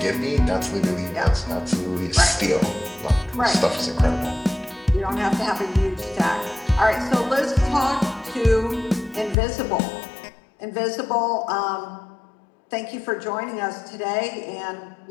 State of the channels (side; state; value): right; drops out; at 9.3 s